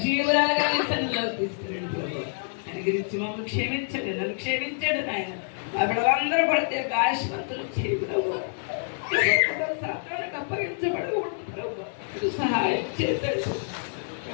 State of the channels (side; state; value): right; silent; digital silence